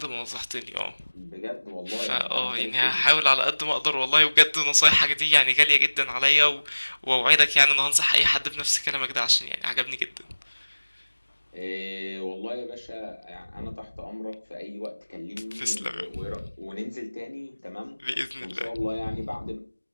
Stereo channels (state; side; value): inverted; both; correlation -1.00